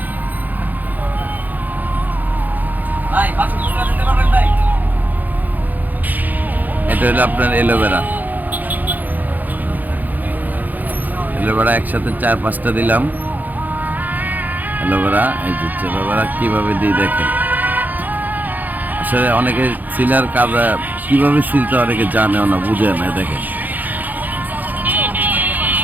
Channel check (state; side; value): late; left; 0.083 ms